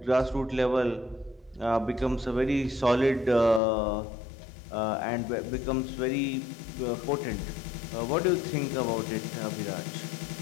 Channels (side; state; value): right; drops out; at 3.6 s